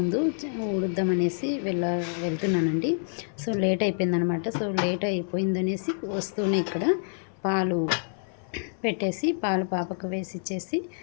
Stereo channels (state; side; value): silent; right; 60 dB below the other